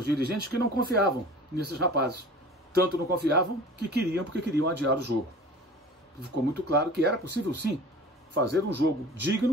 dirigentes que não confiavam nesses rapazes. Tanto não confiavam que queriam, porque queriam adiar o jogo. Ficou muito claro que era possível, sim, fazer um jogo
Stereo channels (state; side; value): normal; both; correlation 0.42